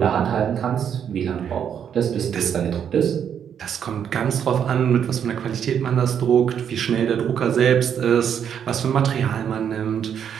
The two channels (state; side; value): quieter; left; 8.4 dB